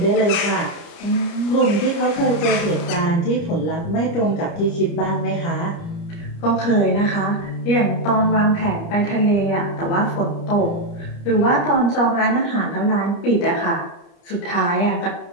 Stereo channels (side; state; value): right; late; 29 ms